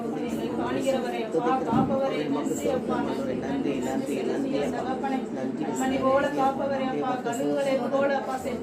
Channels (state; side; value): identical; both; correlation 1.00